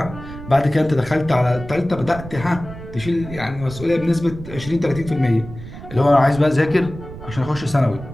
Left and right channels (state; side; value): noise; right; rumble, 13 dB below the sound